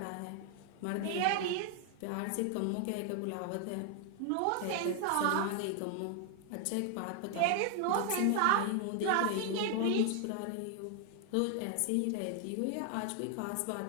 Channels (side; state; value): both; different; correlation 0.00